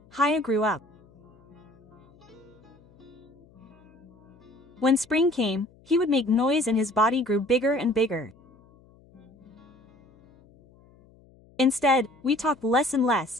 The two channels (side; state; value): left; noise; hum, 28 dB below the sound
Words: high I grew up. When spring came, he would make noise and his body grew bigger and bigger. Instead, we talked less and